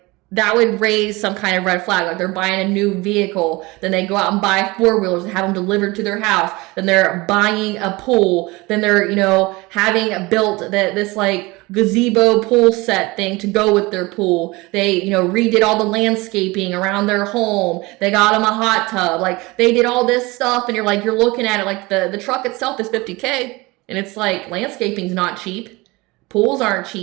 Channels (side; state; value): left; quieter; 23.0 dB